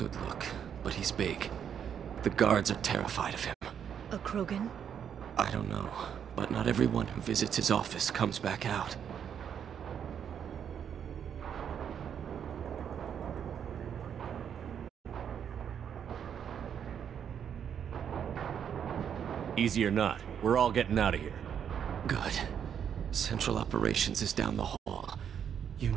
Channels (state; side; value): quieter; left; 8.3 dB